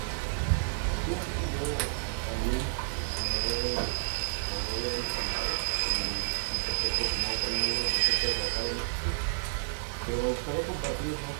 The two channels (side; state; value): left; silent; digital silence